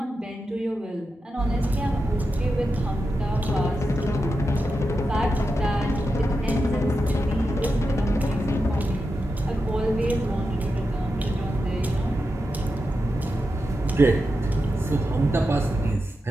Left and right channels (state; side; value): normal; both; correlation 0.89